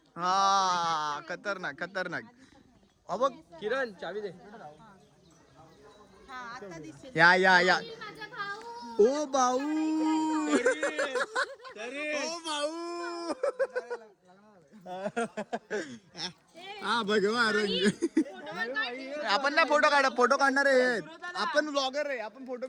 हा खतरनाक खतरनाक बघ किरण चावी दे या ओ भाऊ ओ भाऊ हा भगवा रंग आपण ना फोटो काढणार आहे आपण ब्लॉगर आहे आपण फोटो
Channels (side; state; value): both; identical; correlation 1.00